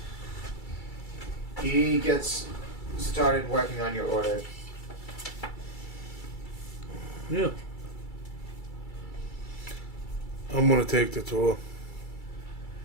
he gets started working on your order. Yeah. I'm gonna take the tour.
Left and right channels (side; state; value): right; late; 2.3 ms